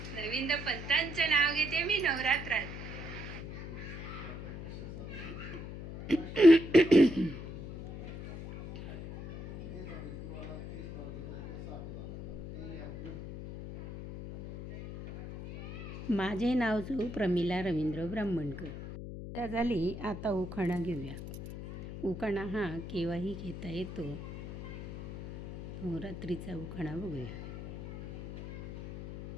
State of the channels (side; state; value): left; noise; hum, 10 dB below the sound